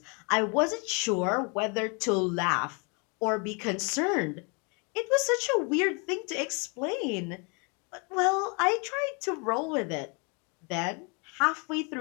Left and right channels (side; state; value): right; quieter; 33.3 dB